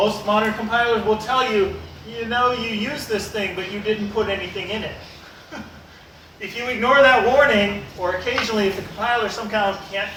modern compilers will tell you, you know, you use this thing, but you didn't put anything in it. If you ignore that warning, or occasionally if the compiler somehow can't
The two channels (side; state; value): both; identical; correlation 1.00